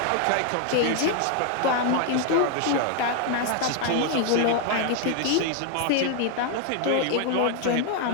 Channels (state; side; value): different; both; correlation 0.00